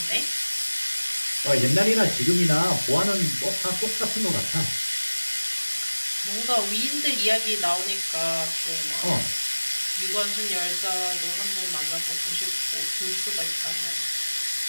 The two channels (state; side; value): inverted; both; correlation -1.00